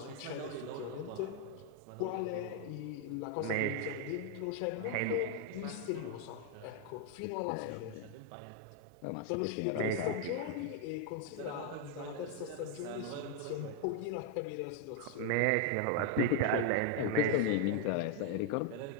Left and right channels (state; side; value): different; both; correlation 0.01